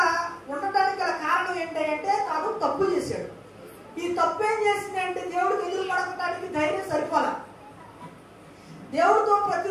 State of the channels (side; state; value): both; identical; correlation 1.00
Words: ఉండటానికి గల కారణం ఏంటంటే తాను తప్పు చేశాడు. ఈ తప్పు ఏం చేసిందంటే దేవుడికి ఎదురు పడకటానికి ధైర్యం సరిపోలా. దేవుడితో